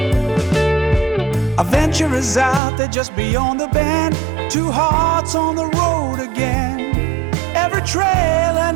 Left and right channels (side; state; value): left; drops out; at 2.6 s